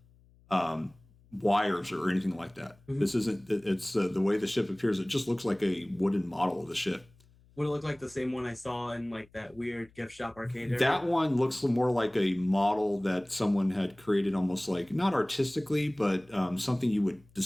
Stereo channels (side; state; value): left; noise; hum, 29 dB below the sound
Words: wires or anything like that. Mm-hmm. This isn't. It's the way the ship appears. It just looks like a wooden model of the ship. Would it look like the same one I saw in like that weird gift shop arcade area? That one looks more like a model that someone had created, almost like not artistically, but something you would